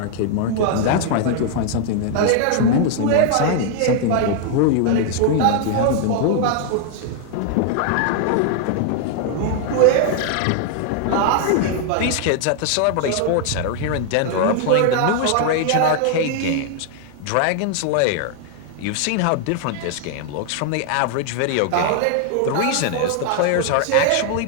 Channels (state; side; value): different; both; correlation 0.00